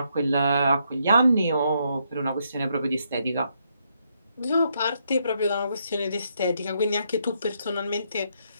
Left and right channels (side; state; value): both; inverted; correlation -0.76